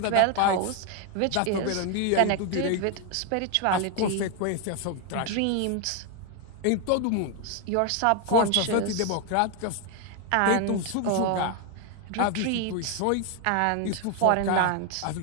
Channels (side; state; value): both; different; correlation 0.01